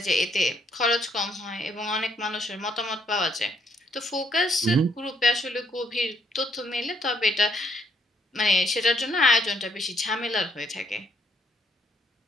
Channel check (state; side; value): normal; both; correlation 0.70